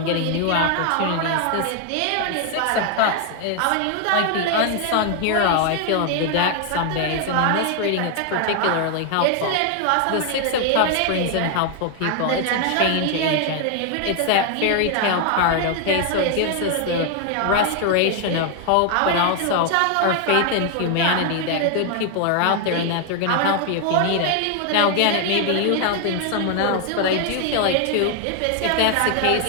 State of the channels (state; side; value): different; both; correlation 0.00